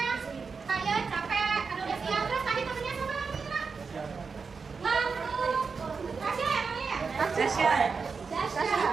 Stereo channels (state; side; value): quieter; left; 5.1 dB